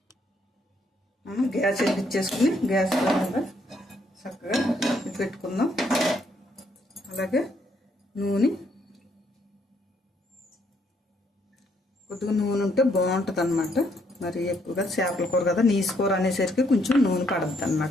మనం గ్యాస్ వెలిగించేసుకుని గ్యాస్ మీద చక్కగా పెట్టుకుందాం. అలాగే నూనె, కొద్దిగా నూనె ఉంటే బాగుంటుంది అనమాట. మరి ఎక్కువగా చేపల కూర కదా, నీసు కూర అనేసరికి కొంచెం నూనె పడుతుంది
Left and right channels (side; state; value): both; normal; correlation 0.71